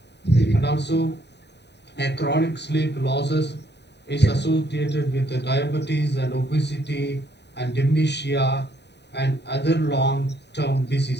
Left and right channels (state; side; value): late; right; 0.50 ms